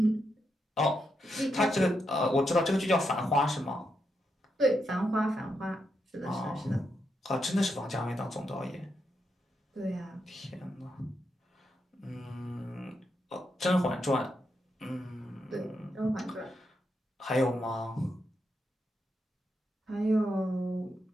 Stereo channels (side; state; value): both; normal; correlation 0.83